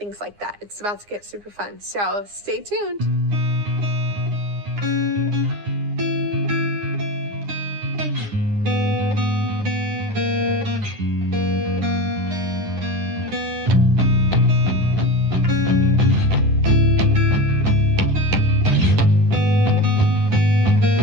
like that. It's about to get super fun. So stay tuned.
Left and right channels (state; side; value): late; left; 9.8 ms